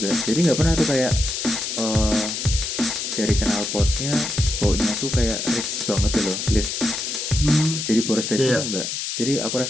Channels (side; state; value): left; noise; hiss, 4 dB below the sound